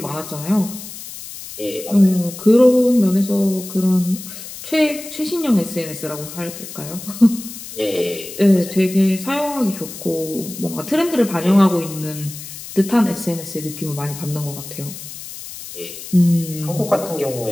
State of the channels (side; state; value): left; noise; hiss, 12 dB below the sound